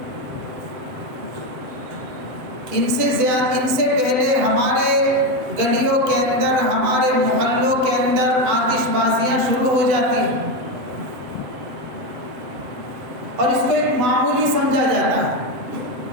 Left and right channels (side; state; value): left; late; 8.0 ms